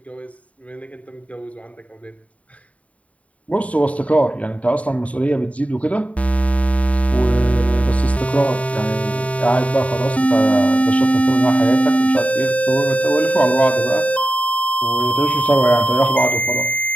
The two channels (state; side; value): late; right; 0.067 ms